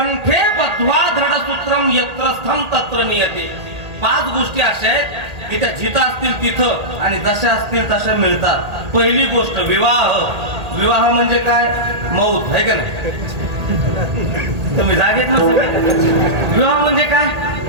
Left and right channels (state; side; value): late; left; 1.8 ms